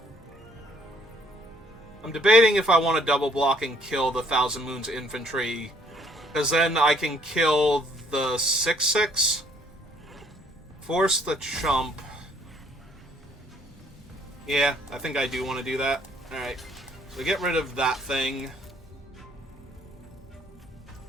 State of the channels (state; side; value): normal; both; correlation 0.63